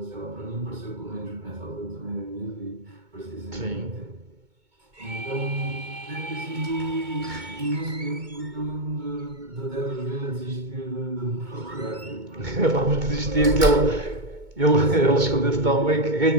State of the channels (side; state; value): left; late; 2.2 ms